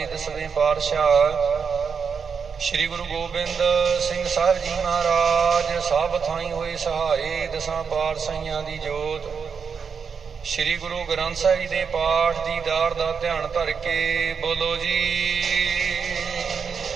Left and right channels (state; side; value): quieter; left; 6.1 dB